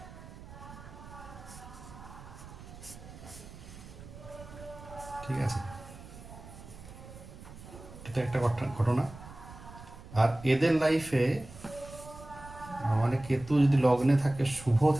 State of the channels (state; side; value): noise; right; rumble, 16 dB below the sound